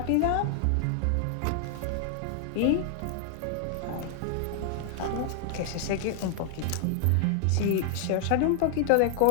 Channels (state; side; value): different; both; correlation 0.00